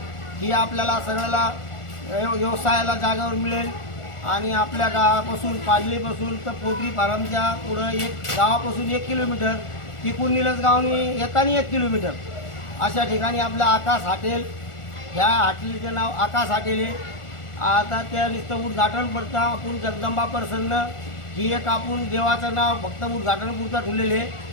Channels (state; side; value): late; right; 1.4 ms